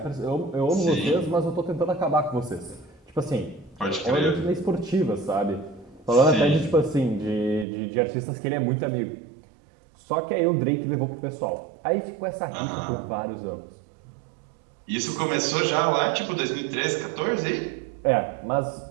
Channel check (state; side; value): drops out; left; at 7.7 s